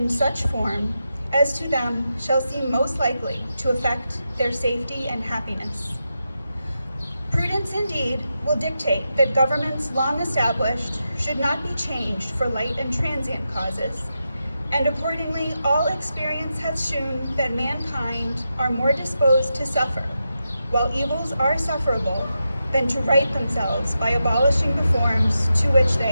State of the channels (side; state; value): both; inverted; correlation -0.88